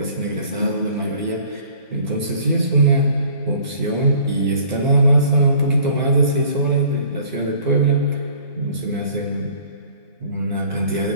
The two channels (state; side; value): inverted; both; correlation -0.52